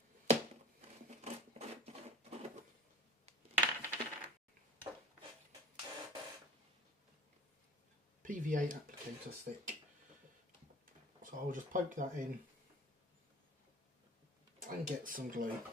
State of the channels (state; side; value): normal; both; correlation 0.43